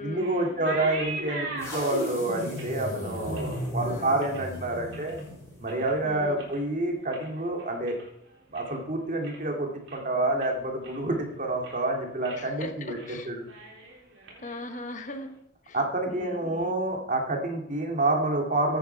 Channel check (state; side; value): normal; both; correlation 0.04